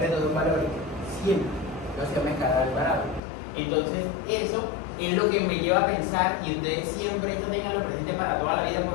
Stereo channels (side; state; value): right; drops out; at 3.2 s